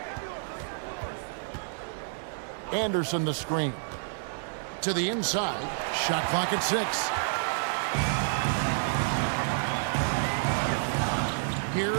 Anderson the screen. To the inside. Shot clock at 6.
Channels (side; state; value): left; silent; digital silence